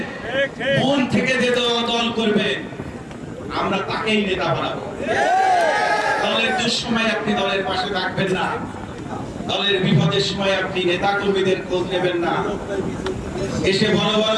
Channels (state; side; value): identical; both; correlation 1.00